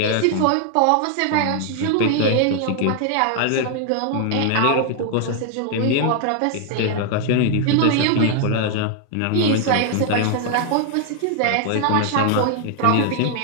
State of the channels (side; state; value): both; different; correlation 0.00